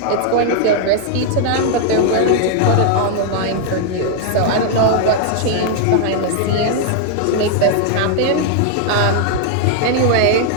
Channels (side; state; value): both; different; correlation 0.00